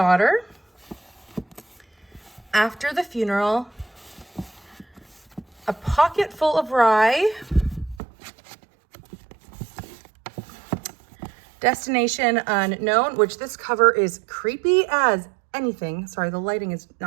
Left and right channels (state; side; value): drops out; left; at 8.0 s